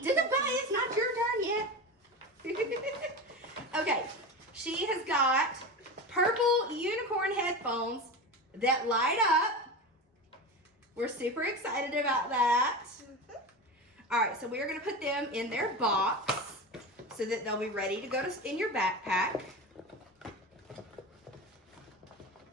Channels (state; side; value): normal; both; correlation 0.25